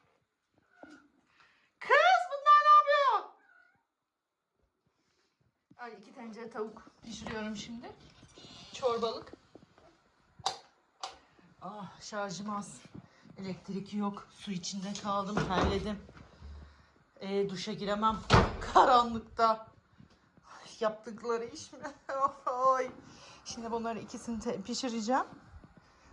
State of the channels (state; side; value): identical; both; correlation 1.00